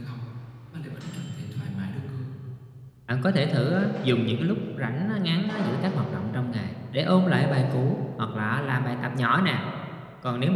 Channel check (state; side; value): identical; both; correlation 1.00